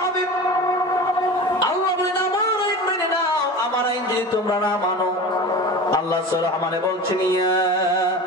হবে। আল্লাহ বলেন, আমার আইন মেনে নাও। আমার আইন যদি তোমরা না মানো, আল্লাহ সূরা রহমানে বলছেন, ইয়া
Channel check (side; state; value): both; normal; correlation 0.32